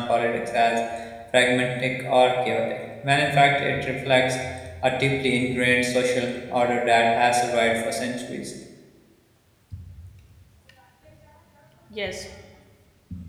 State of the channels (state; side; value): identical; both; correlation 1.00